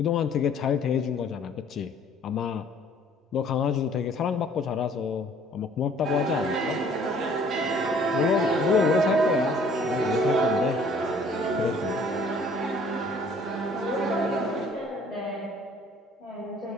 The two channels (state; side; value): normal; both; correlation 0.56